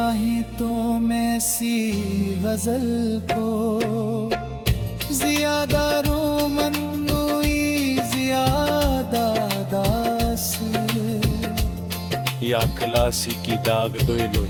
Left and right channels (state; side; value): identical; both; correlation 1.00